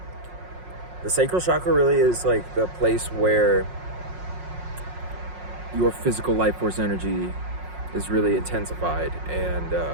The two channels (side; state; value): left; late; 5.5 ms